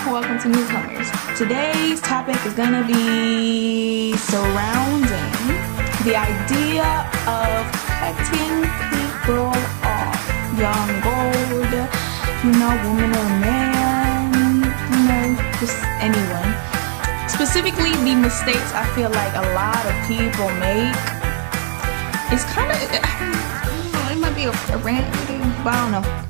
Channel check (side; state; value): left; silent; digital silence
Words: to newcomers. Today's topic is gonna be surrounding the idea of cutting people off. Young, old, woman or man, just anyone. Specifically the mistakes I feel like a lot of people make. It's kind of, it might be a rant video, but I don't know.